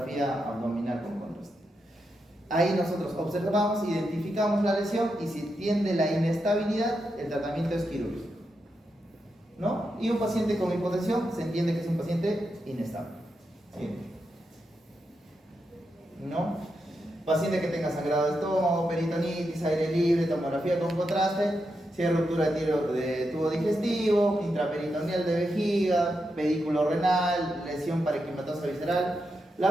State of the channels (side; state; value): both; normal; correlation 0.85